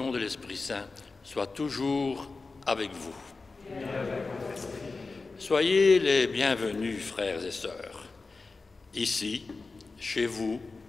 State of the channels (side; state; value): right; quieter; 3.9 dB